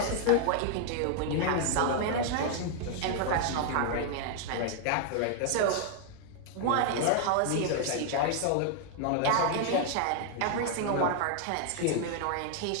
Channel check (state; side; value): different; both; correlation 0.00